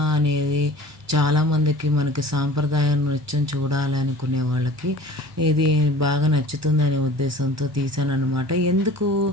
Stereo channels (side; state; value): both; normal; correlation 0.44